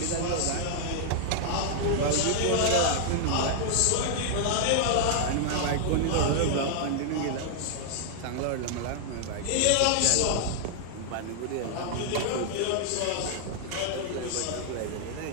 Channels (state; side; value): different; both; correlation -0.01